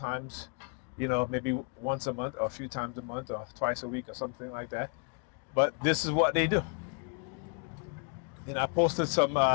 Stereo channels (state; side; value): quieter; right; 37.3 dB